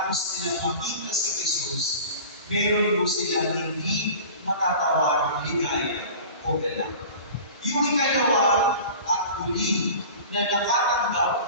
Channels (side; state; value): both; inverted; correlation -0.39